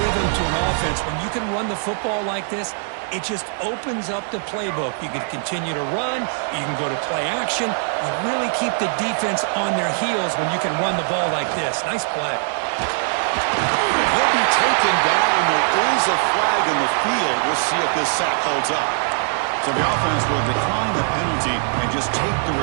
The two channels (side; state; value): left; silent; 61 dB below the other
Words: to an offense. When you can run the football like this, it just opens up the playbook. You can continue to run. You can go to play action. You really keep the defense on their heels when you can run the ball like this. Nice play. He'll be taken down. There is a flag in the field. We'll see if this sack holds up. So the offense will decline the penalty and just take the